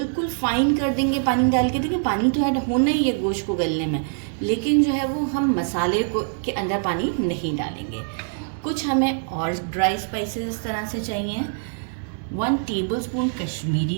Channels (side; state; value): left; silent; digital silence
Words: फाइन कर देंगे पानी डाल के। देखिए, पानी तो ऐड होना ही है गोश्त को गलने में, लेकिन जो है वो हम मसाले को के अंदर पानी नहीं डालेंगे। कुछ हमें और ड्राई स्पाइसेस इस तरह से चाहिए। 1 टेबलस्पून